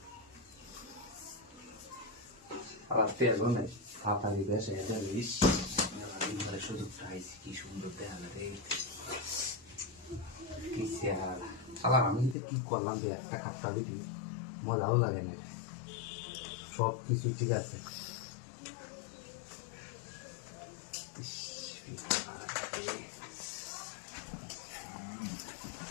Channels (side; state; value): right; drops out; at 12.4 s